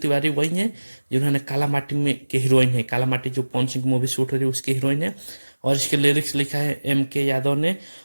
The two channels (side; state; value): both; inverted; correlation -1.00